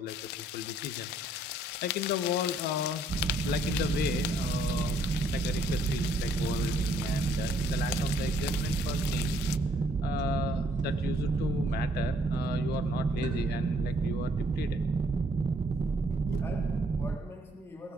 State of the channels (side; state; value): both; normal; correlation 0.66